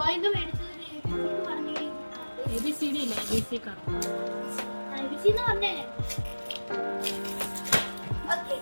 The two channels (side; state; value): both; inverted; correlation -1.00